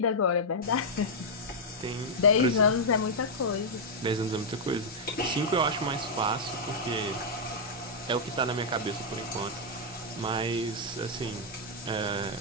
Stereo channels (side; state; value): both; normal; correlation -0.05